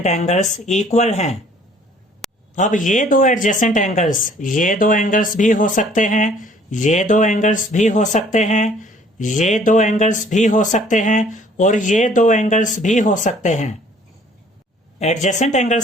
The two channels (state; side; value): normal; both; correlation 0.57